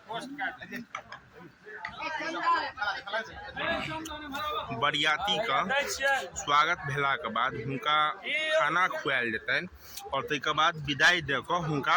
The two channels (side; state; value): both; identical; correlation 1.00